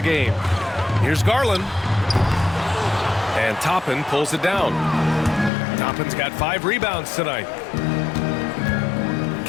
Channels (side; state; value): right; drops out; at 5.5 s